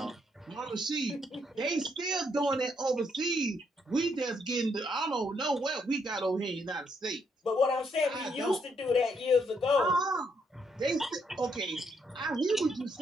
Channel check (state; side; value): normal; both; correlation 0.74